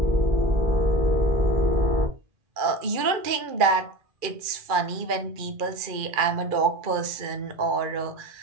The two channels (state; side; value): late; left; 2.4 ms